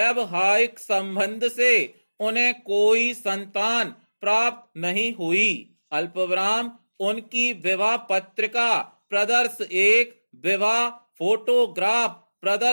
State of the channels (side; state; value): both; inverted; correlation -1.00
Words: संबंध से उन्हें कोई संतान प्राप्त नहीं हुई। अल्पविराम उनकी विवाह पत्रिका प्रदर्श 1, विवाह फोटोग्राफ